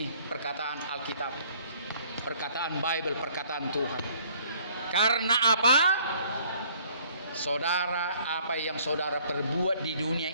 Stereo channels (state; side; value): inverted; both; correlation -0.58